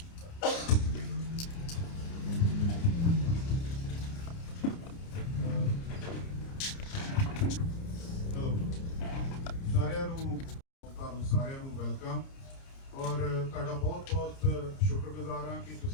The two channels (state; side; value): late; right; 30 ms